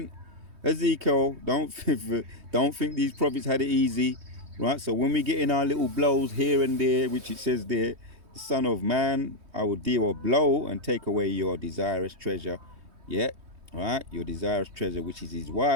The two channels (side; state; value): left; late; 3.2 ms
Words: Ezekiel, don't think these prophets had it easy, right? So when we get in our little blows here and there, which it says there, the Son of Man, I will deal a blow and take away your desirous treasure. Yeah, right? Your desirous treasure, which is his